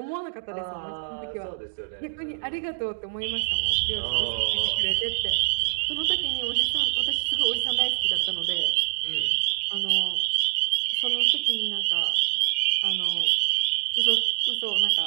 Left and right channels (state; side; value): silent; left; digital silence